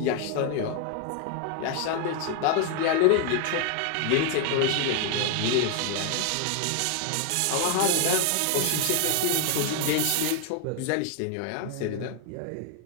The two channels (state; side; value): different; both; correlation 0.01